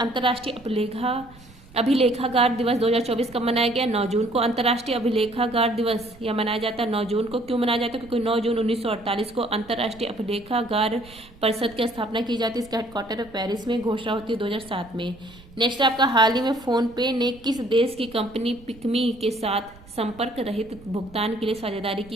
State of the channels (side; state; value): right; noise; rumble, 22 dB below the sound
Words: अभिलेखागार दिवस 2024 कब मनाया गया? 9 जून को। अंतर्राष्ट्रीय अभिलेखागार दिवस यह मनाया जाता है 9 जून को। क्यों मनाया जाता है? क्योंकि 9 जून 1948 को अंतर्राष्ट्रीय अभिलेखागार परिषद की स्थापना की जाती है। इसका हेडक्वार्टर पेरिस में, घोषणा होती है 2007 में। नेक्स्ट आपका हाल ही में फोन पे ने किस देश की कंपनी पिकमी के साथ संपर्क रहित भुगतान के लिए साझेदारी